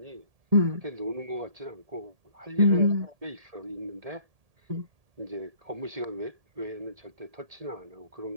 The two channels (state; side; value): late; left; 1.8 ms